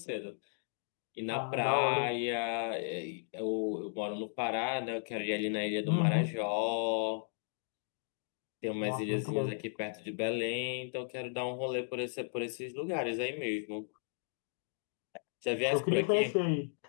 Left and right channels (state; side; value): silent; right; digital silence